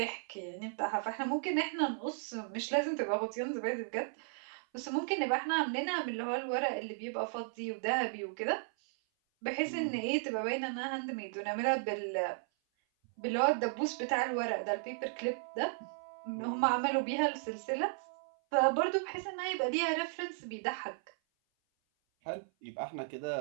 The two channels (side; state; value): left; silent; 54 dB below the other